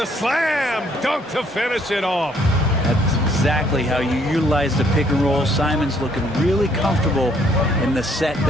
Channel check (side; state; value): both; normal; correlation 0.66